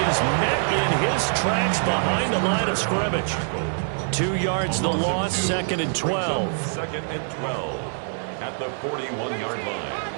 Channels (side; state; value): left; silent; digital silence